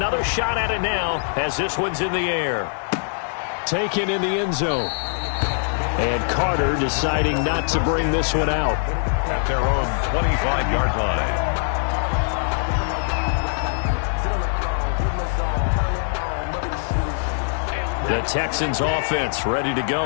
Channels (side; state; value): right; silent; 62 dB below the other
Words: shot at it now as this one's in the air. Taken in the end zone. And Carter deciding not to bring this one out. at their own 25-yard line. The Texans offense ready to